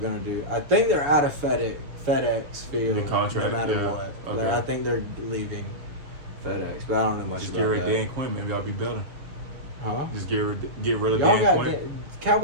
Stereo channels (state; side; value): late; left; 6.9 ms